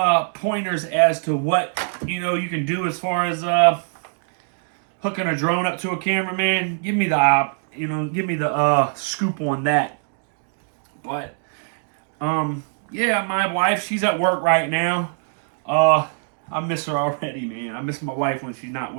pointers as to what you can do as far as hooking a drone up to a camera, man, give me the give me the scoop on that. But yeah, my wife, she's at work right now. I miss her already, man. I miss my wife when she's not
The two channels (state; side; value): silent; left; digital silence